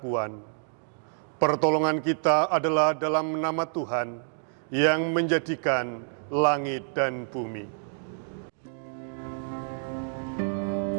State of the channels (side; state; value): left; silent; digital silence